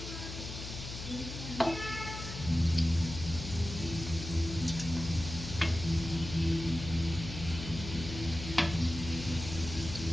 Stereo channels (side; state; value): left; noise; hum, 9 dB below the sound